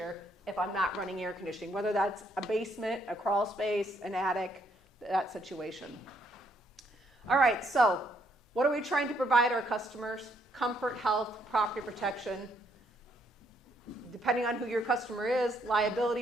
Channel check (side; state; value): both; normal; correlation 0.71